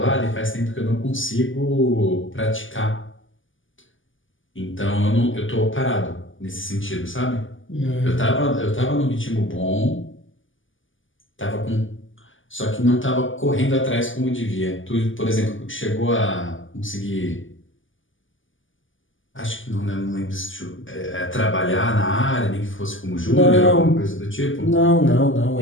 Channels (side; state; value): right; late; 0.57 ms